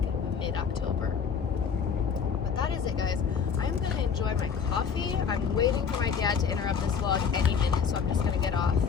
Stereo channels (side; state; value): right; quieter; 6.5 dB